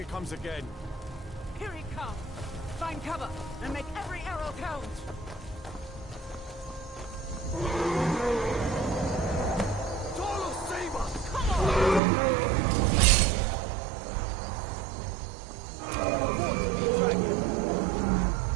comes again. Here he comes! Find cover and make every arrow count! Tolo, save us! Come on!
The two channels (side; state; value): left; drops out; at 12.0 s